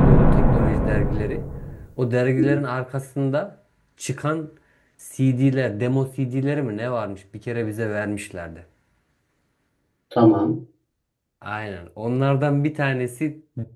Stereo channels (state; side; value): identical; both; correlation 1.00